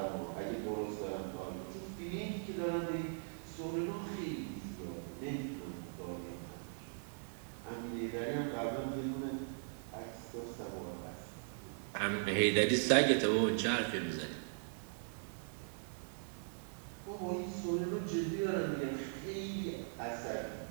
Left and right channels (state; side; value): silent; left; digital silence